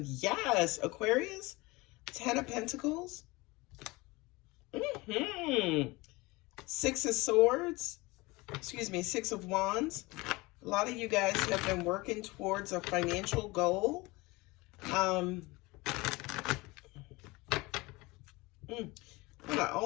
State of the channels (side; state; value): right; quieter; 22.9 dB